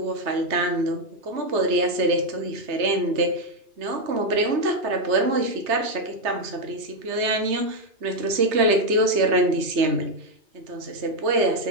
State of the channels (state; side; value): late; left; 3.2 ms